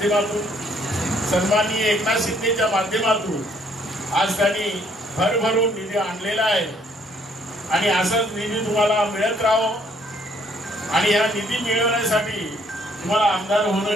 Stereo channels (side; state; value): both; normal; correlation 0.65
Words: सन्माननीय एकनाथ शिंदेच्या माध्यमातून आज त्यांनी भरभरून निधी आणलेला आहे आणि असाच निधी तुम्हाला मिळत राहो आणि हा निधी मिळवण्यासाठी तुम्हाला आमदार